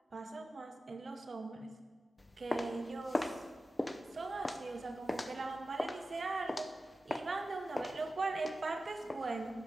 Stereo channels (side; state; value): both; normal; correlation 0.94